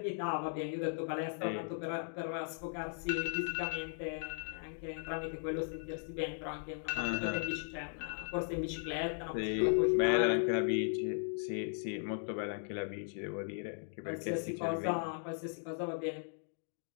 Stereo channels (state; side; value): silent; right; digital silence